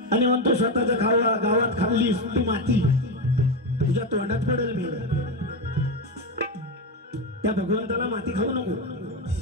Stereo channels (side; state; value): both; normal; correlation 0.13